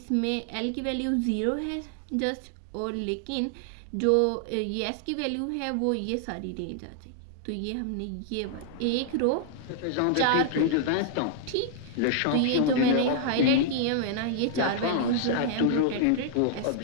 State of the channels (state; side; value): different; both; correlation -0.01